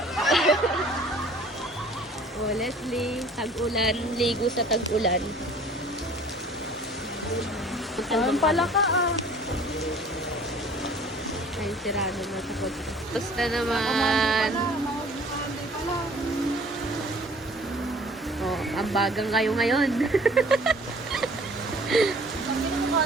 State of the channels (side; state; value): both; normal; correlation 0.51